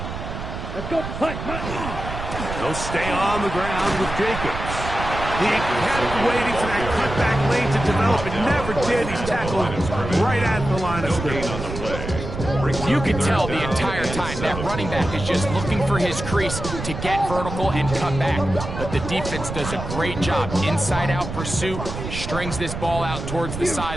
Let's go. They'll stay on the ground with Jacobs. He kept waiting for that cutback lane to develop. It never did. He's tackled right at the line of scrimmage. You can tell the entire time that running back is just looking for his crease to get vertical and cut back. But the defense does a great job. Inside-out pursuit, strings this ball out towards the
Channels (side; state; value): right; noise; rumble, 7 dB below the sound